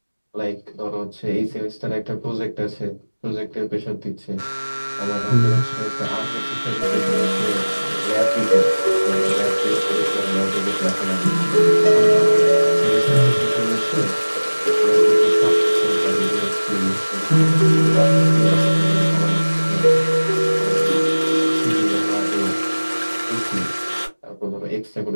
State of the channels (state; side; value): inverted; both; correlation -1.00